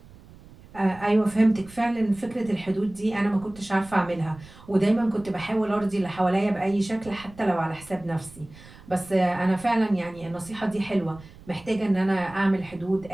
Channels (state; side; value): noise; right; rumble, 21 dB below the sound